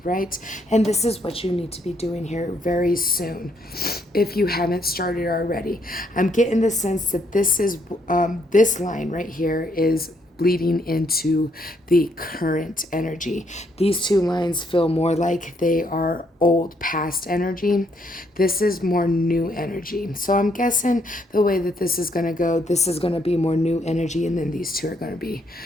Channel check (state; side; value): normal; both; correlation 0.72